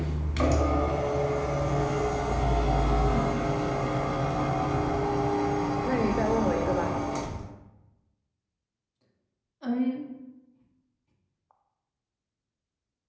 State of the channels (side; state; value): both; identical; correlation 1.00